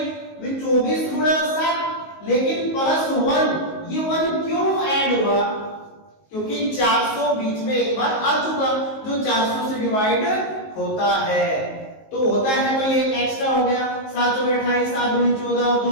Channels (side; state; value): right; late; 19 ms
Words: 24 गुणा 7, लेकिन प्लस 1, ये 1 क्यों ऐड हुआ? क्योंकि 400 बीच में एक बार आ चुका, जो 400 से डिवाइड होता है, तो होता है, तो ये एक्स्ट्रा हो गया। 7 चौके 28, 7 दूनी 14 और